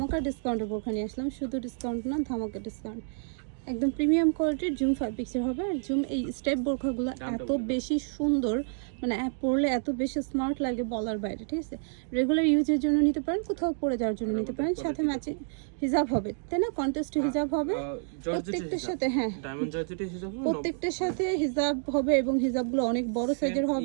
ডিসকাউন্টের বোরখা নিয়ে আসলাম। শুধু ডিসকাউন্ট না, ধামাকা ডিসকাউন্ট। একদম প্রিমিয়াম কোয়ালিটির জুম ফ্যাব্রিক্সের হবে। আর জুম এই স্টেপ বোরখাগুলো এত বেশি সুন্দর, মানে পরলে এত বেশি স্মার্ট লাগে বলার বাইরে। ঠিক আছে, রেগুলার ইউজের জন্য নিতে পারেন, কোথাও পরে যাওয়ার জন্য নিতে পারেন। সাথে ম্যাচিং হিজাব হবে, তাই না? কন্টেস্ট হিজাব হবে প্রত্যেকটার সাথে। হ্যাঁ, প্রত্যেকটার সাথে হিজাব হবে এবং হিজাবগুলো অনেক বড় সাইজের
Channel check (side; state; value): left; silent; 59 dB below the other